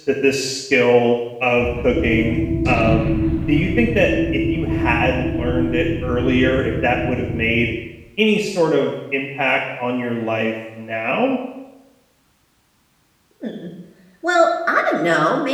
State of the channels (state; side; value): identical; both; correlation 1.00